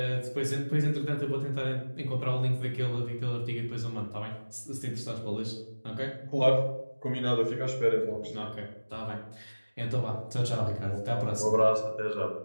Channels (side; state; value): both; inverted; correlation -1.00